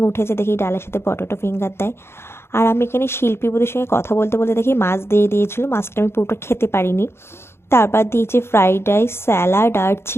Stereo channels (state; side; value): late; right; 0.12 ms